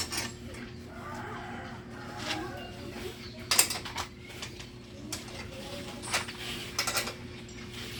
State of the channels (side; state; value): both; identical; correlation 1.00